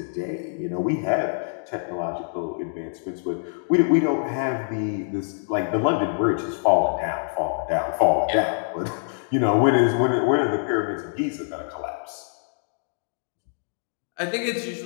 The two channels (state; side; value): silent; right; digital silence